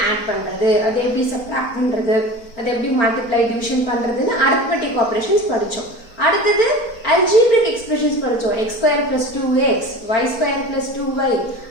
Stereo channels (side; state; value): right; late; 4.4 ms